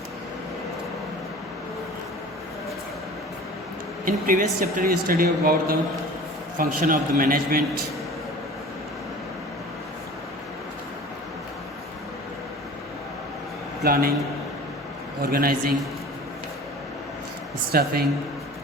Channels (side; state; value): both; normal; correlation 0.41